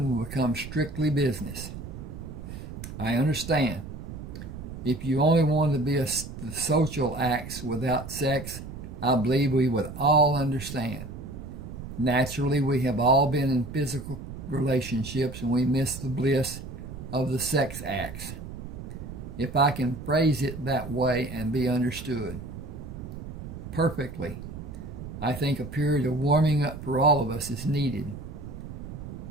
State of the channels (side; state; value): right; noise; rumble, 10 dB below the sound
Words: will become strictly business. I understand. If you only wanted to be the social acts without sex, I believe we would all understand. Naturally, we have all been in physical relationships and we miss the bliss of the sex acts, if I can phrase it that way and be understood. Perfectly. I think a period of warming up for all of us is needed.